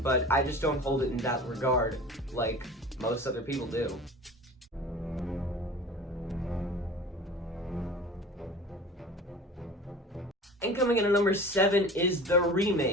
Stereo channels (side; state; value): both; normal; correlation 0.39